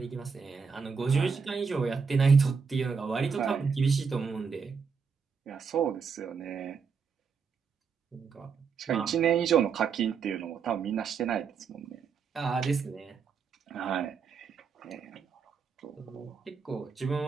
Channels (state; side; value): quieter; left; 5.8 dB